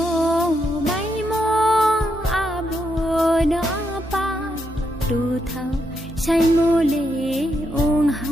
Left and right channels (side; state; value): both; normal; correlation 0.81